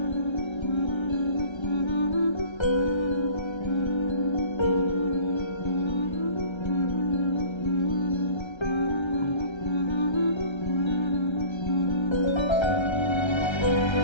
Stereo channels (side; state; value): right; late; 1.3 ms